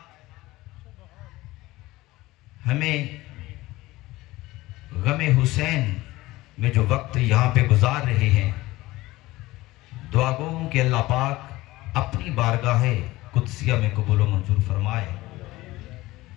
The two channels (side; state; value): right; quieter; 18.7 dB